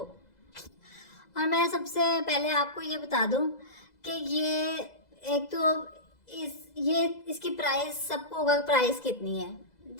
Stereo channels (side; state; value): right; late; 2.0 ms